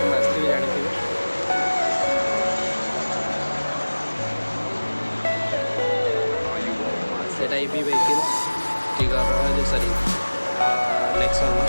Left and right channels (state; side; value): inverted; both; correlation -1.00